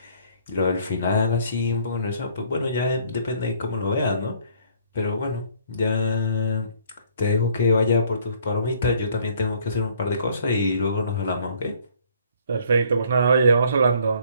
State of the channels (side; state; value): both; inverted; correlation -0.60